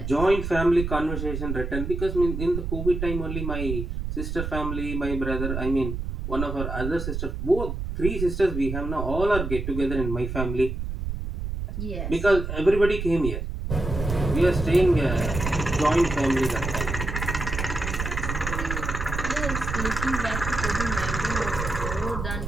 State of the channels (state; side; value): noise; right; rumble, 4 dB below the sound